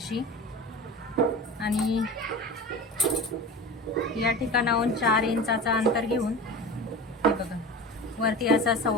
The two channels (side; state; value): both; normal; correlation 0.31